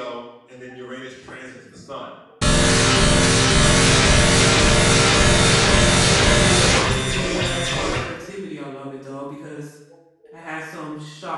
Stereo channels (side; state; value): both; identical; correlation 1.00